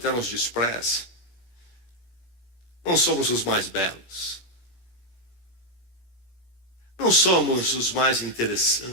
nos despreze. Não somos os mais belos. Não somos os mais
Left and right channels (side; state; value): right; late; 17 ms